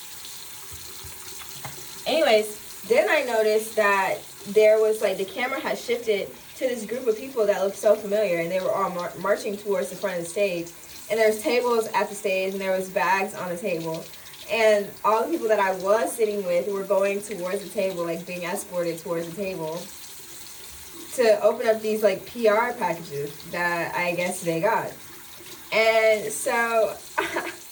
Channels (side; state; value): both; identical; correlation 1.00